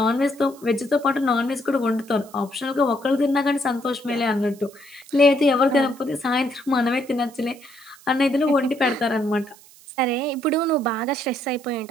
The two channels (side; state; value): right; noise; hiss, 24 dB below the sound